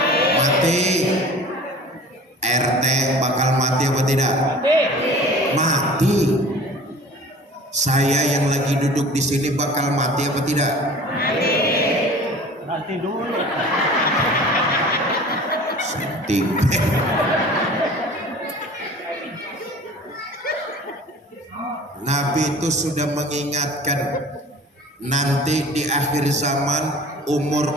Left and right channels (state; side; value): normal; both; correlation 0.43